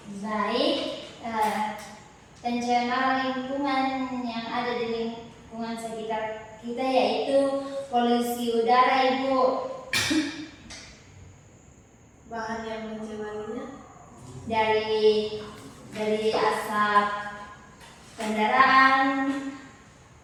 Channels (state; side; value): identical; both; correlation 1.00